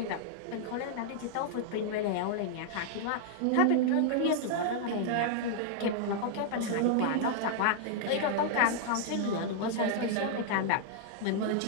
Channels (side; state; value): both; different; correlation -0.01